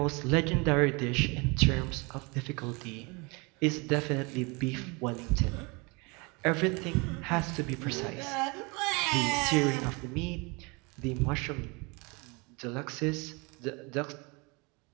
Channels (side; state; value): left; quieter; 28.6 dB